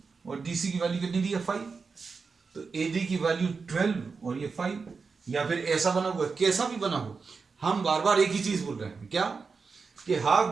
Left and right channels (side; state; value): left; quieter; 4.9 dB